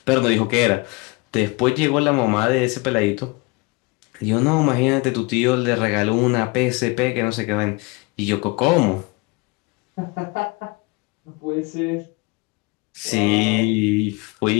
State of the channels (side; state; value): right; quieter; 26.4 dB